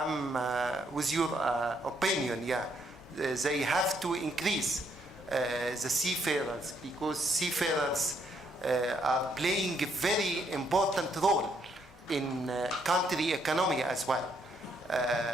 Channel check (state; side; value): normal; both; correlation 0.72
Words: with your opinion, yeah. They have to increase the seafarers, because seafarers are playing a very important role in country economy as well.